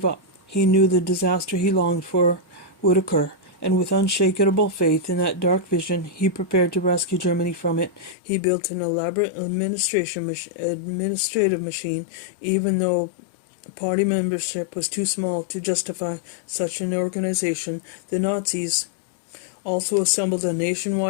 up. He knew the disaster he longed for would occur, and with unshakable faith in that dark vision, he prepared to rescue Germany from it. He built an elaborate administrative machine, even though party membership was too small to justify such an organization. The Nazis also assembled a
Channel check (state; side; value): drops out; right; at 8.2 s